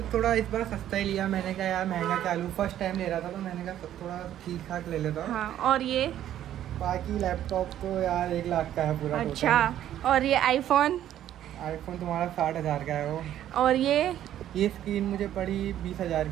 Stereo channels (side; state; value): left; quieter; 11.6 dB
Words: थोड़ा इस बार सस्ता ही लिया मैंने, कहा यार महंगा क्या लूँ, फर्स्ट टाइम ले रहा था तो मैंने कहा थोड़ा ठीक ठाक ले लेता हूँ। हाँ, और ये? बाकी लैपटॉप तो यार 1 लाख का है पूरा। अच्छा, और ये आईफोन तुम्हारा 60,000 का है वो। और ये स्क्रीन मुझे पड़ी 20,000